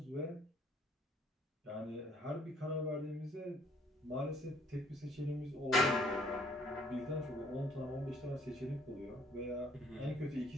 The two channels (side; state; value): both; normal; correlation 0.62